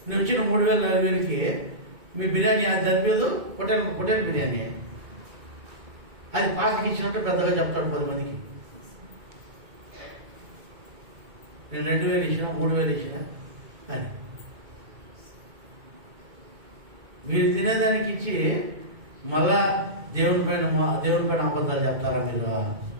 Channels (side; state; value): left; late; 2.2 ms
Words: నువ్వు ఇచ్చిన 3,000, 4,000కి మీ బిర్యానీ అది సరిపోదు, హోటల్ బిర్యానీ అది పాస్టర్కి ఇచ్చినట్టు పెద్దగా చెప్తాడు 10 మందికి. నేను 2,000 ఇచ్చిన, 3,000 ఇచ్చిన అని. మీరు తినేదానికి ఇచ్చి మళ్ళా దేవుని పైన అబద్ధాలు చెప్తారా మీరు?